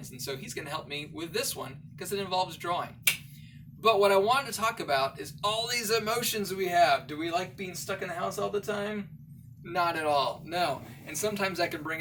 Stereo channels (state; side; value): identical; both; correlation 1.00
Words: And so he's going to help me with this one because it involves drawing. But what I wanted to talk about is all these emotions we have. Do we like being stuck in the house all the time? Not at all, no. And sometimes that can